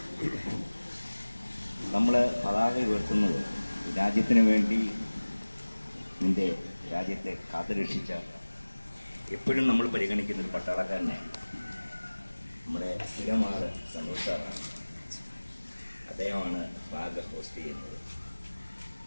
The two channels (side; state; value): both; inverted; correlation -1.00